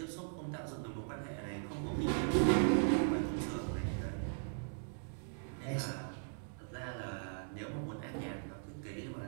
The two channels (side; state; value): left; silent; digital silence